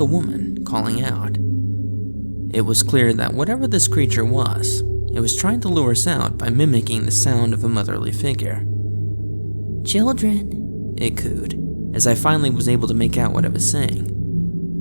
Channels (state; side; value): inverted; both; correlation -1.00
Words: woman calling out. It was clear that whatever this creature was, it was trying to lure us out by mimicking the sound of a motherly figure. "Children," it cooed, as I finally was able to make out what it was